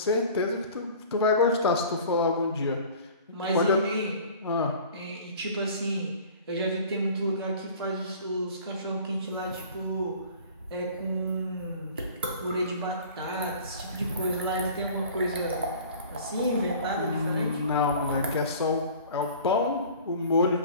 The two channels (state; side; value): inverted; both; correlation -0.45